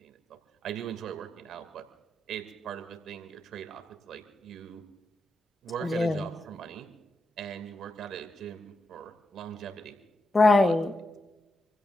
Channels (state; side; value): normal; both; correlation 0.86